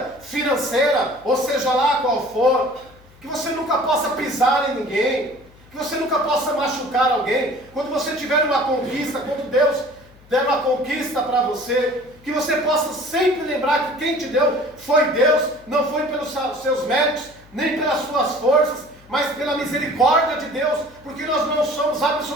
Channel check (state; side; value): noise; left; hum, 26 dB below the sound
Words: financeira, ou seja lá qual for, que você nunca possa pisar em ninguém, que você nunca possa machucar alguém. Quando você tiver uma conquista, quando Deus der uma conquista para você, que você possa sempre lembrar que quem te deu foi Deus, não foi pelos seus méritos, nem pelas suas forças, mas pela misericórdia de Deus, porque nós não somos